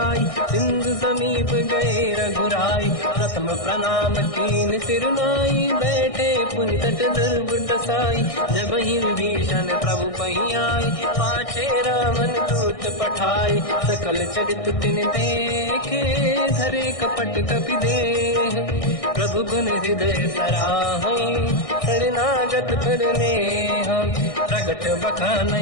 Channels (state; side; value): late; right; 1.6 ms